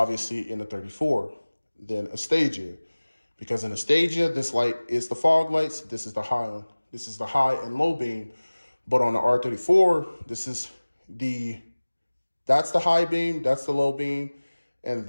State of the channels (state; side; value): inverted; both; correlation -1.00